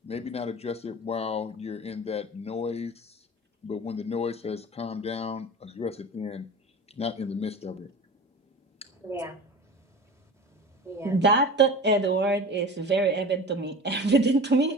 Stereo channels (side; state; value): both; normal; correlation 0.34